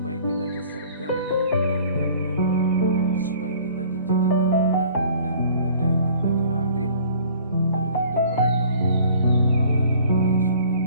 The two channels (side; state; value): both; inverted; correlation -0.51